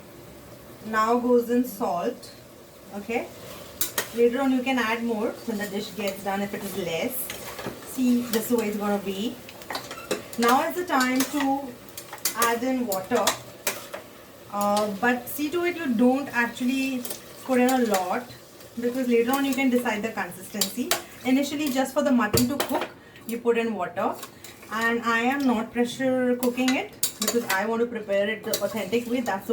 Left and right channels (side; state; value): both; identical; correlation 1.00